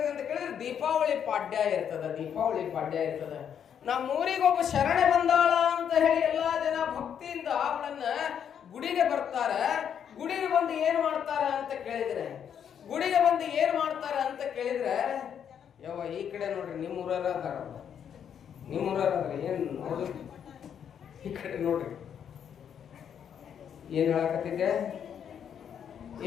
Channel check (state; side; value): quieter; right; 8.4 dB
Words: ಅಂತ ಕೇಳಿದ್ರೆ ದೀಪಾವಳಿ ಪಾಡ್ಯ ಇರ್ತದೆ. ದೀಪಾವಳಿ ಪಾಡ್ಯ ಇರ್ತದೆ. ನಮ್ಮೂರಿಗೊಬ್ಬ ಶರಣೆ ಬಂದಾಳ ಅಂತ ಹೇಳಿ ಎಲ್ಲಾ ಜನ ಭಕ್ತಿಯಿಂದ ಅವಳನ್ನ ಗುಡಿಗೆ ಬರ್ತಾರೆ. ಗುಡಿಗೆ ಬಂದು ಏನ್ ಮಾಡ್ತಾರ ಅಂತ ಕೇಳಿದ್ರೆ ಯಾವ ಈ ಕಡೆ ನೋಡ್ರಿ, ನಿಮ್ಮೂರರ ಅದಾರ, ಏನ್ ನೋಡ್ರಿ ಈ ಕಡೆ ನೋಡ್ರಿ. ಏನ್ ಹೇಳಕತ್ತಿದ್ದೆ